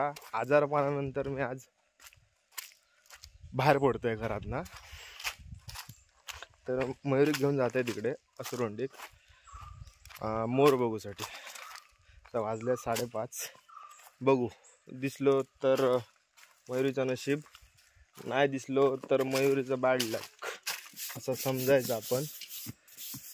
आजारपणानंतर मी आज बाहेर पडतोय घरात ना. तर मयुरी घेऊन जाते तिकडे असुरवंडीक मोर बघूसाठी. तर वाजले 5:30. बघू दिसलो तर मयुरीचं नशीब, नाही दिसलो तर मयुरीचं बॅड लक असं समजायचं आपण.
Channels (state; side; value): identical; both; correlation 1.00